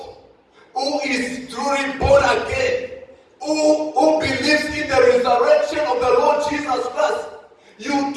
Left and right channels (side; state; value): both; identical; correlation 1.00